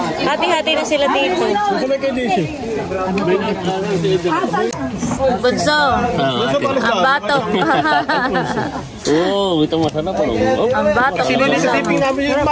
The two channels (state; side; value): identical; both; correlation 1.00